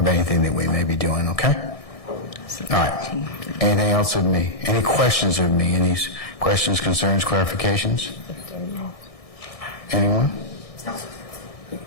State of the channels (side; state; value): right; late; 1.6 ms